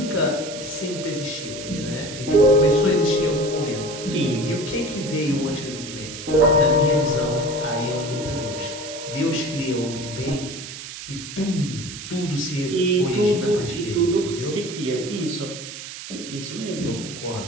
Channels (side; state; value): right; noise; hiss, 11 dB below the sound